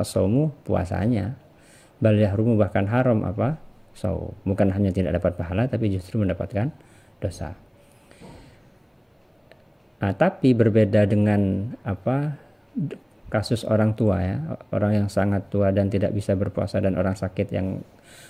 puasanya. Bal yahrumu, bahkan haram apa? Shaum. Bukan hanya tidak dapat pahala, tapi justru mendapatkan dosa. Nah, tapi berbeda dengan kasus orang tua ya, orang yang sangat tua dan tidak bisa berpuasa, dan orang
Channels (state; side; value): identical; both; correlation 1.00